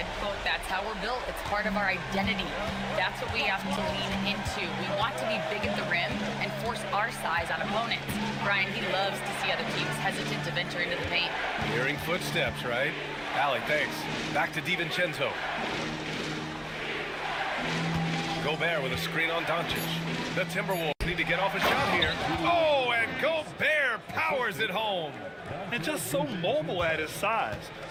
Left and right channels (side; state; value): both; identical; correlation 1.00